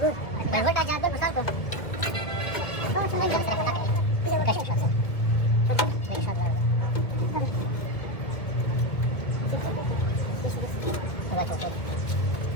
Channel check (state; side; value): late; right; 2.0 ms